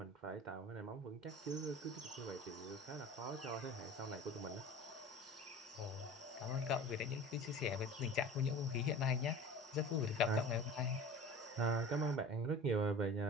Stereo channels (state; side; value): normal; both; correlation 0.38